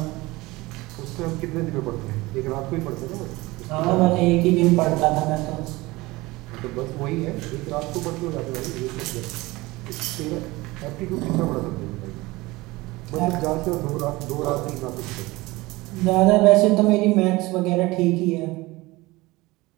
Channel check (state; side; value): quieter; left; 21.1 dB